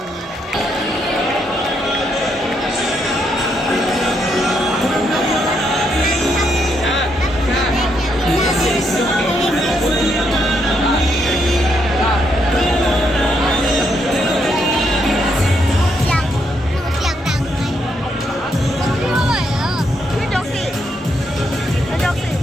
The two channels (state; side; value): normal; both; correlation 0.77